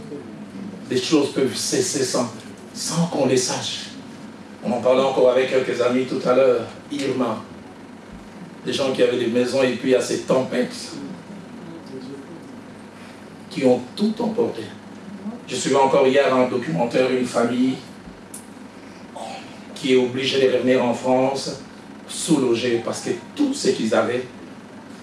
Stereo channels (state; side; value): identical; both; correlation 1.00